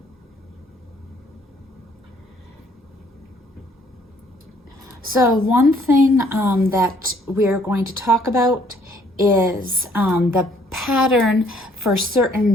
So one thing that we're going to talk about is the pattern for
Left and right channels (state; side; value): normal; both; correlation 0.63